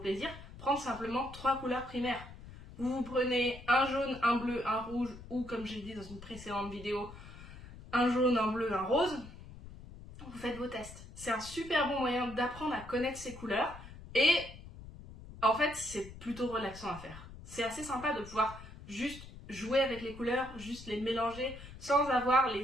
plaisir, prendre simplement 3 couleurs primaires. Vous prenez un jaune, un bleu, un rouge, ou comme j'ai dit dans une précédente vidéo, un jaune, un bleu, un rose. Vous faites vos tests. C'est un super bon moyen d'apprendre à connaître ces couleurs et en fait c'est plutôt relaxant à faire. C'est assez sympa de pouvoir juste jouer avec les couleurs, juste les mélanger sans avoir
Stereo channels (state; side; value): noise; left; rumble, 15 dB below the sound